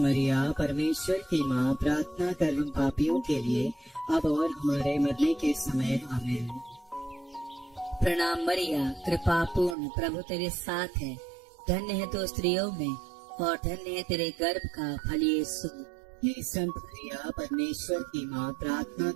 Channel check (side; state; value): left; drops out; at 9.8 s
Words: परमेश्वर की माँ, प्रार्थना कर हम पापियों के लिए अब और हमारे मरने के समय आमीन। प्रणाम मरिया, कृपा पूर्ण, प्रभु तेरे साथ है, धन्य है तू स्त्रियों में और धन्य है तेरे गर्भ का फल यीशु। हे संत मरिया परमेश्वर की माँ, प्रार्थना